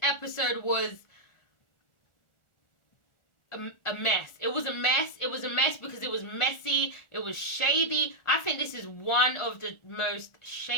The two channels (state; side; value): late; right; 1.4 ms